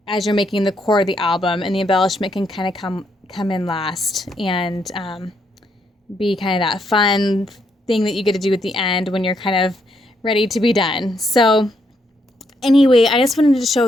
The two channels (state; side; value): normal; both; correlation 0.76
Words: as you're making the core of the album, and the embellishment can kind of come in last and be kind of that fun thing that you get to do at the end when you're kind of ready to be done. So anyway, I just wanted to